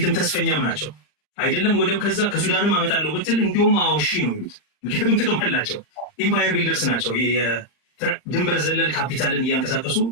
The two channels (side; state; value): right; late; 39 ms